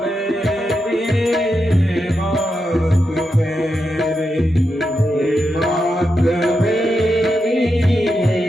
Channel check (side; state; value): both; normal; correlation 0.86